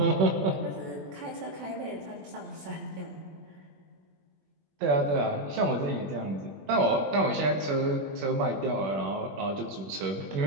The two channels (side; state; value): left; late; 21 ms